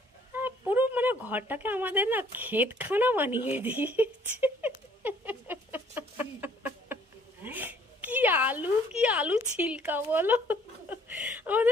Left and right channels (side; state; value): both; normal; correlation 0.60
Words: পুরো মানে ঘরটাকে আমাদের না ক্ষেতখানা বানিয়ে দিয়েছে। কি আলু ছিলকা বলো,